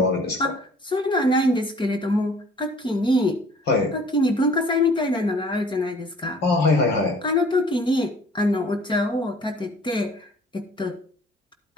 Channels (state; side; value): normal; both; correlation 0.52